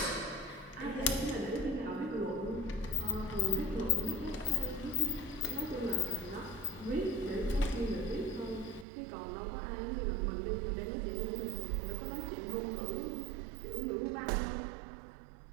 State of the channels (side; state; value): left; drops out; at 8.8 s